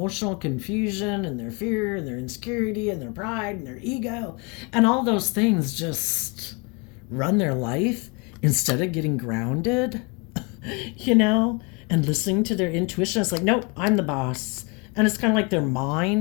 confusion and their fear and their insecurity and their pride and their ego and all those things just run their life instead of getting grounded, you know, and listening to their intuition. It's like, nope, I'm the boss. And it's kind of like their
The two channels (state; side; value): quieter; right; 30.8 dB